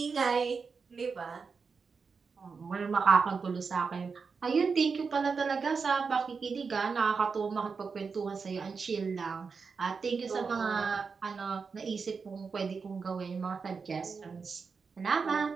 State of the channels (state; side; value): quieter; left; 5.2 dB